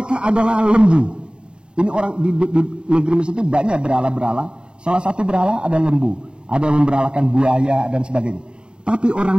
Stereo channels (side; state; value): left; late; 0.051 ms